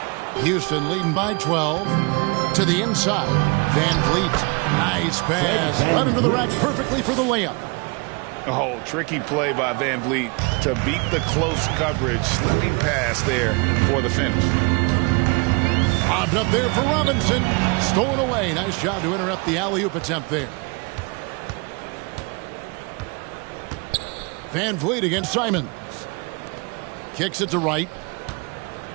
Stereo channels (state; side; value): quieter; left; 30.6 dB